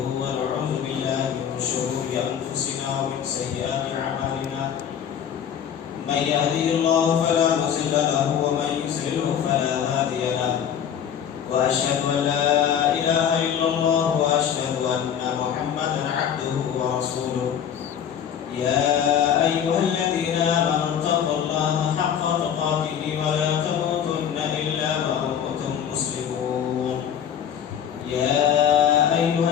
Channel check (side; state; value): right; quieter; 8.7 dB